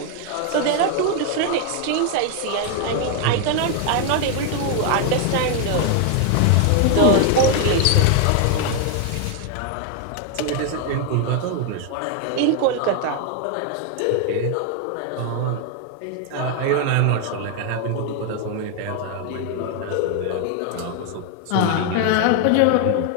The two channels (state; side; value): different; both; correlation 0.00